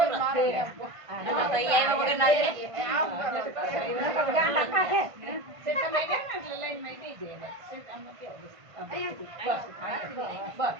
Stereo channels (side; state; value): left; late; 1.5 ms